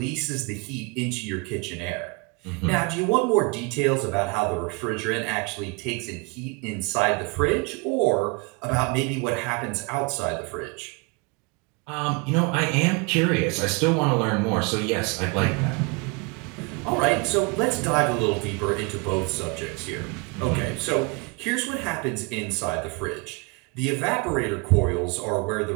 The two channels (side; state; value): left; quieter; 29.8 dB